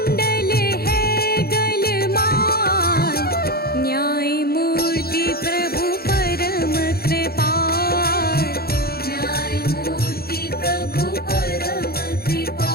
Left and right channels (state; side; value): late; right; 0.45 ms